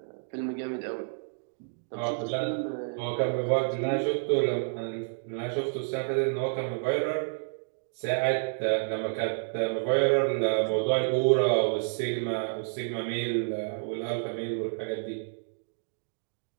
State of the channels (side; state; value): left; silent; digital silence